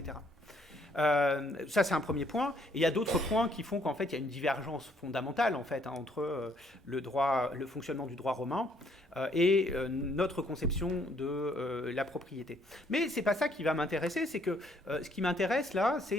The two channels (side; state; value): both; normal; correlation 0.66